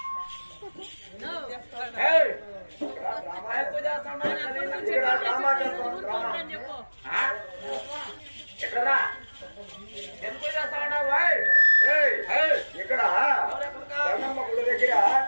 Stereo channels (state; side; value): inverted; both; correlation -1.00